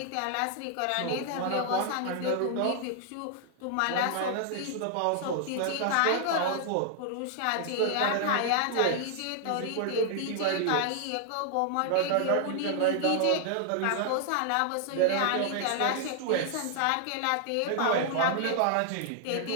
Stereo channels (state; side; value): different; both; correlation 0.00